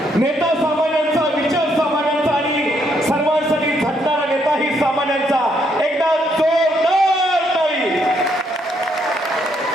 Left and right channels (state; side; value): normal; both; correlation 0.73